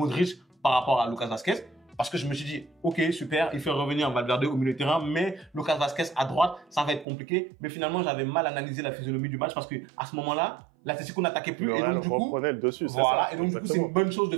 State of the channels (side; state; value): left; drops out; at 7.1 s